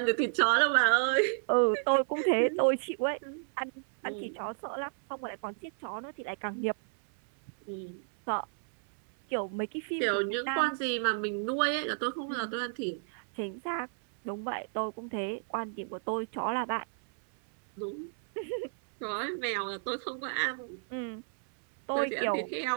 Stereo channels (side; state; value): left; silent; 57 dB below the other